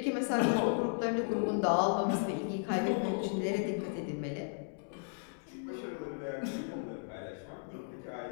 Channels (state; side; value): silent; right; digital silence